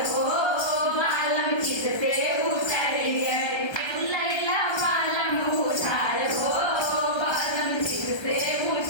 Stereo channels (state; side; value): late; right; 1.3 ms